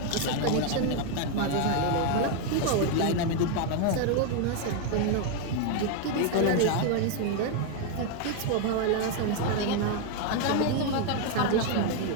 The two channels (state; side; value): different; both; correlation 0.01